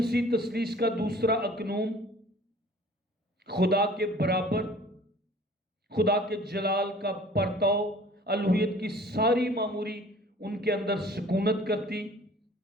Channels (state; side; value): normal; both; correlation 0.50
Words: تثلیث کا دوسرا اقنوم، خدا کے برابر، خدا کے جلال کا پرتو، الوہیت کی ساری معموری ان کے اندر سکونت کرتی۔